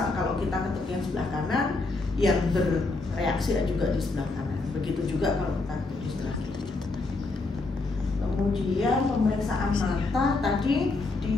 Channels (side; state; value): right; quieter; 3.5 dB